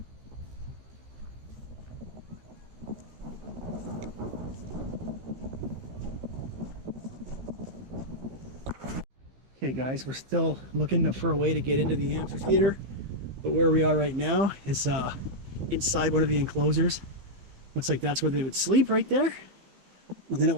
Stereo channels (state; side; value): late; left; 15 ms